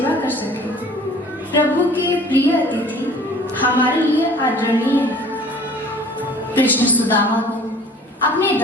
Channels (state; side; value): normal; both; correlation 0.49